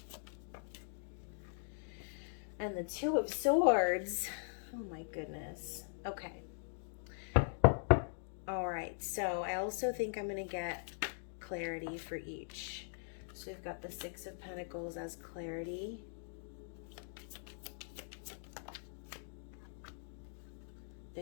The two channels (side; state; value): right; silent; digital silence